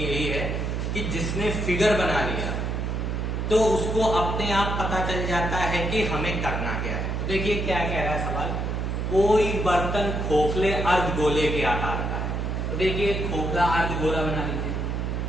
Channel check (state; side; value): noise; right; hum, 1 dB below the sound